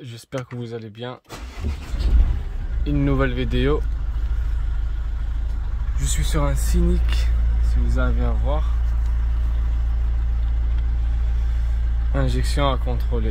j'espère que vous allez bien. Une nouvelle vidéo. Je suis sur un Scénic, si vous arrivez à voir. Injection à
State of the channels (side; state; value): both; identical; correlation 1.00